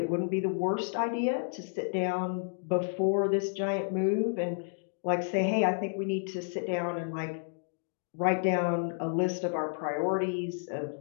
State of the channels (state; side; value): silent; right; digital silence